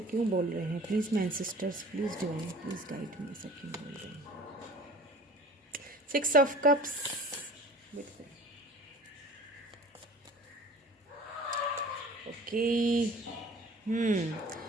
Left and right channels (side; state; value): both; normal; correlation 0.45